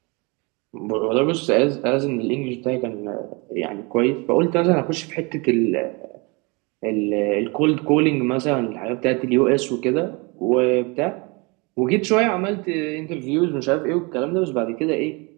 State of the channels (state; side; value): quieter; left; 28.7 dB